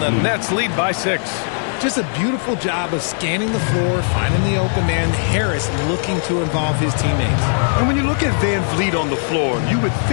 the Nets lead by 6. Just a beautiful job of scanning the floor, finding the open man. Harris looking to involve his teammates. And when you look at Van Vliet on the floor, you would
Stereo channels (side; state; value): right; silent; 67 dB below the other